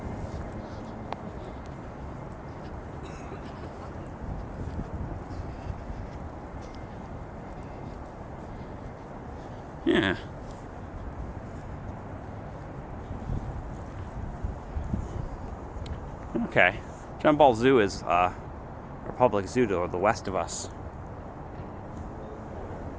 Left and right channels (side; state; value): both; identical; correlation 1.00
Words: Yeah. Okay. John Ball Zoo is a public zoo to the west of us.